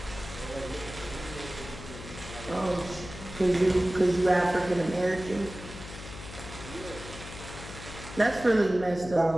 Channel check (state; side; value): noise; left; hum, 13 dB below the sound